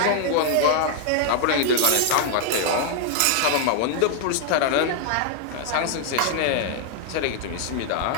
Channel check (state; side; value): different; both; correlation 0.00